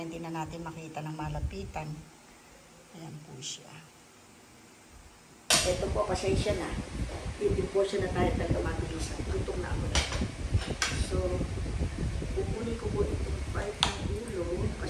na natin makita ng malapitan. Ayan po siya. Ito po, pasensya na. Eating portion na tayo taga-mabilisan. Gutom na ako na. So, pupunin ko po itong part ng ulo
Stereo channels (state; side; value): identical; both; correlation 1.00